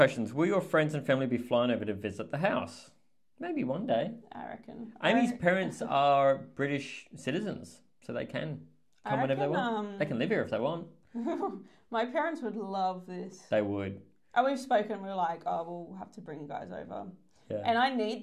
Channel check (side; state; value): both; identical; correlation 1.00